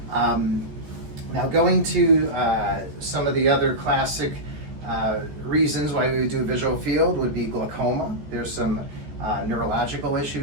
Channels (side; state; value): left; late; 14 ms